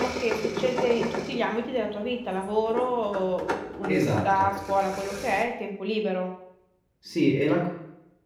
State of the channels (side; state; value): both; identical; correlation 1.00